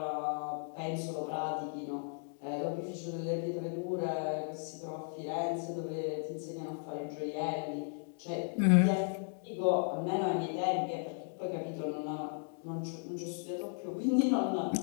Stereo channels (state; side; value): silent; right; 54 dB below the other